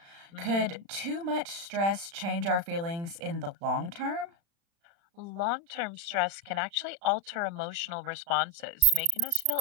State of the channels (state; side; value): late; left; 35 ms